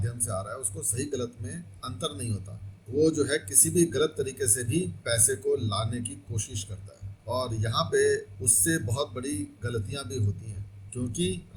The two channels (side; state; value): both; identical; correlation 1.00